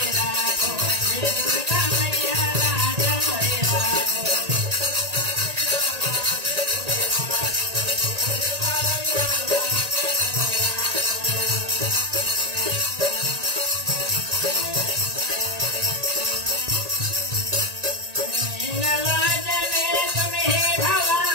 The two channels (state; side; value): late; left; 1.8 ms